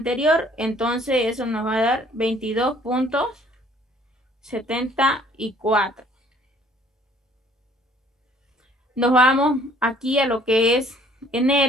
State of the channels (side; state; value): both; normal; correlation 0.59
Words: entonces eso nos va a dar 22.74. Nos vamos aquí a lo que es